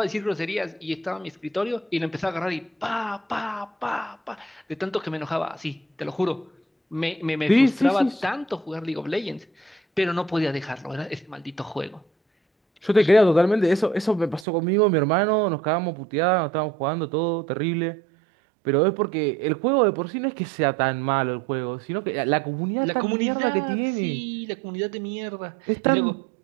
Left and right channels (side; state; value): left; drops out; at 14.5 s